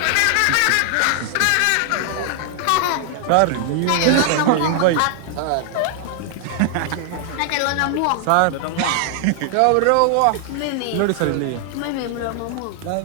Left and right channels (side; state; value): both; different; correlation 0.00